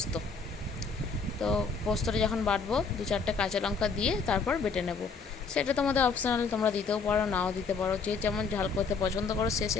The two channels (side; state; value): right; quieter; 4.9 dB